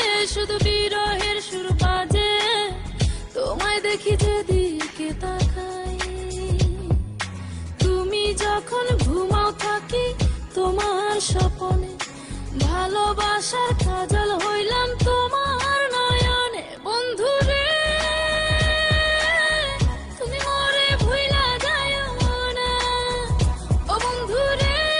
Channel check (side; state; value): both; identical; correlation 1.00